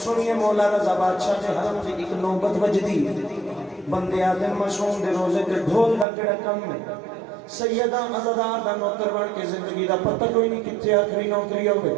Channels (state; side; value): drops out; left; at 6.1 s